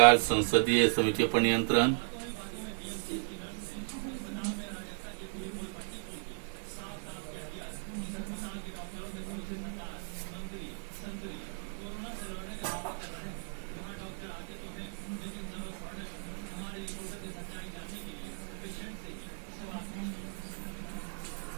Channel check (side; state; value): left; silent; digital silence